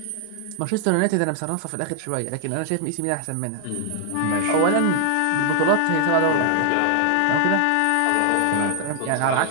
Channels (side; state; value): both; different; correlation 0.00